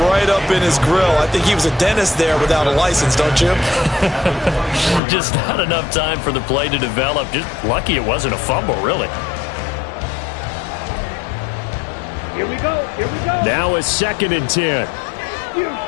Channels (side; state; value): right; drops out; at 5.0 s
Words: right up in his grill. I think he was a dentist there without a license, don't you? Just not enough time for the play to develop. Just lucky it wasn't a fumble, really. Here we go. Here we go. Now it's 2nd and 10. You,